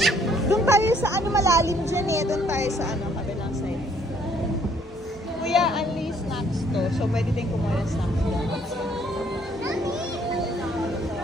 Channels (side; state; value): both; normal; correlation 0.64